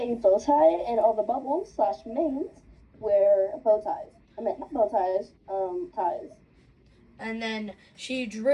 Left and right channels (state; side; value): identical; both; correlation 1.00